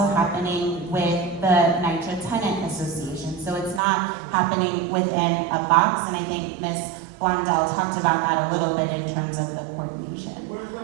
happening with the NYCHA Tenant Association. So it's not happening within a box, and I think Ms. Blondell talked about that a little bit in terms of the coordination.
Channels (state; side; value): drops out; left; at 3.8 s